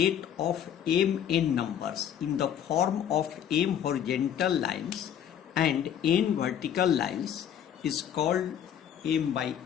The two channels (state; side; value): quieter; right; 9.5 dB